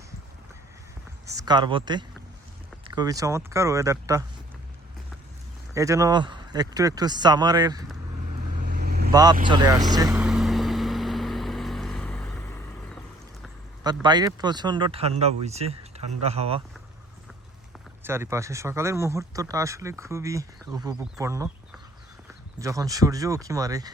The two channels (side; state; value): both; normal; correlation 0.59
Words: স্কারবোতে খুবই চমৎকার ওয়েদারটা। এই যেন একটু একটু সামারের ভাব চলে আসছে। বাট বাইরে প্রচণ্ড ঠান্ডা বইছে, ঠান্ডা হাওয়া চারিপাশে। সকালের মুহূর্তটা আসলে খুবই উপভোগপূর্ণ। যখন সূর্য উঁকি মারে